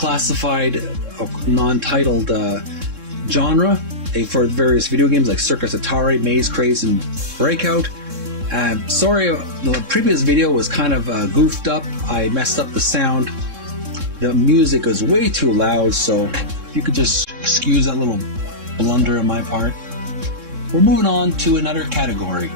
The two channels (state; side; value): late; left; 3.7 ms